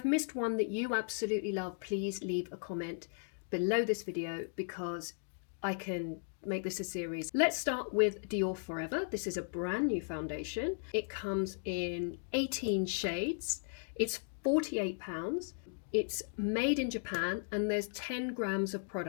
missed one that you absolutely love, please leave a comment below this video because I can make this a series. Let's start with Dior Forever. This is a brand new foundation. It comes in 18 shades. It's £48. It's made in Japan and there's 10 grams of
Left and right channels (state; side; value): silent; right; digital silence